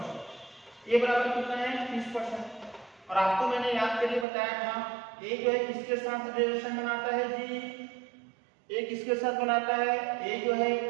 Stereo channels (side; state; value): left; drops out; at 4.2 s